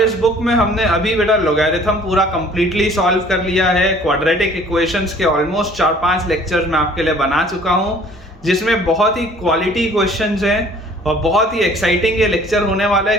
बुक में हमने अभी बेटा लॉगरिथम पूरा कंप्लीटली सॉल्व कर लिया है। क्वाड्रेटिक इक्वेशंस के ऑलमोस्ट 4-5 लेक्चर्स मैं आपके लिए बना चुका हूँ, जिसमें बहुत ही क्वालिटी क्वेश्चंस हैं और बहुत ही एक्साइटिंग ये लेक्चर होने वाला है,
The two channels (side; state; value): both; normal; correlation 0.53